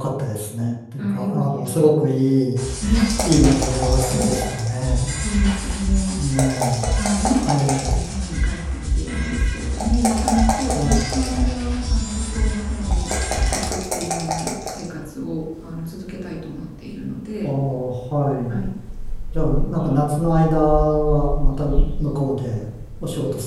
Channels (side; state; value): both; identical; correlation 1.00